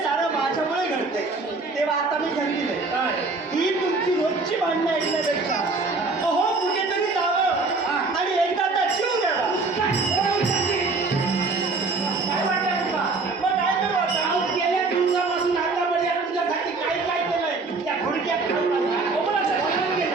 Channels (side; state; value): left; quieter; 3.8 dB